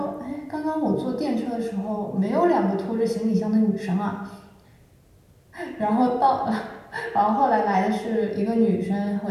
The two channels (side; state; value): both; identical; correlation 1.00